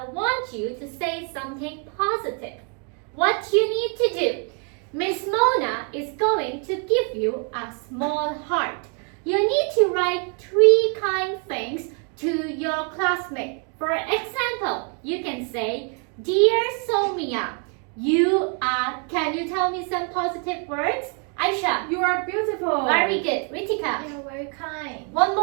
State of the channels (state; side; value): quieter; left; 38.0 dB